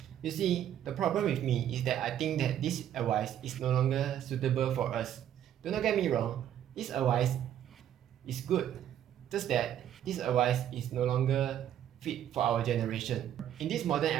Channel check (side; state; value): left; quieter; 10.6 dB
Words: You see, the problem with me is that I think that this advice is no longer suitable for us. Do not get me wrong, this advice is good, just that this advice is no longer fit for our generation. In this modern